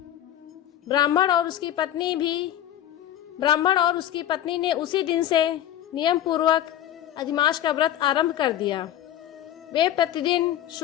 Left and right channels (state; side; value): quieter; right; 11.8 dB